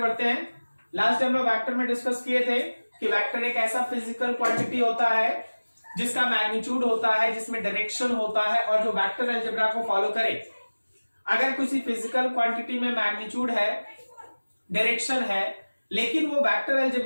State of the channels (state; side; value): inverted; both; correlation -1.00